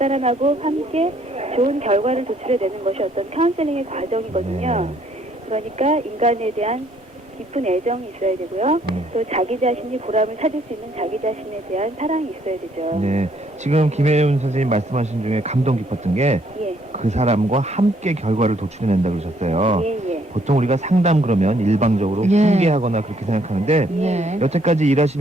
함께 좋은 결과를 도출해내는 것이 어떤 카운셀링의 과정이거든요. 그러니까 인간에 대한 깊은 애정이 있어야 되고요. 또 자기 자신이 보람을 찾을 수 있는 자기 자신에 대한 사랑이 있어야 되죠. 지금 김혜윤 선생님 말씀하신 중에 감동 깊었던 게 그 사람과 함께 결과를 도출해낸다고 그러셨어요. 보통 우리가 상담 그러면 일방적으로 훈계하거나 그렇게 생각하는데 여태까지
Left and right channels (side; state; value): both; normal; correlation 0.66